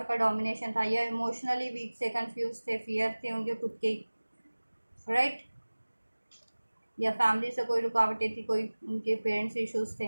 का डोमिनेशन था, या इमोशनली वीक से, कंफ्यूज थे, फियर थे उनके खुद के, राइट, या फैमिली से कोई रुकावटें थी, कोई उनके पेरेंट्स इश्यूज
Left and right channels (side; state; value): both; inverted; correlation -1.00